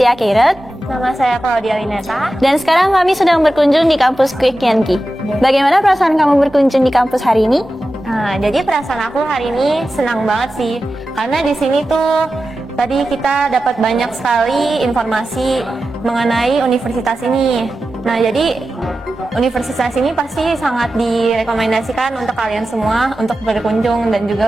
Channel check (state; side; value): normal; both; correlation 0.93